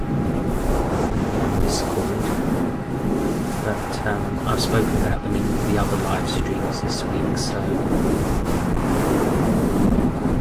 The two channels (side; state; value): both; identical; correlation 1.00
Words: But I've spoken about them in the other live streams this week, so